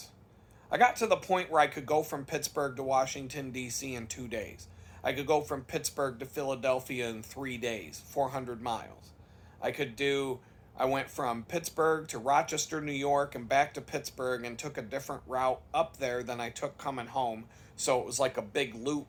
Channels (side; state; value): both; identical; correlation 1.00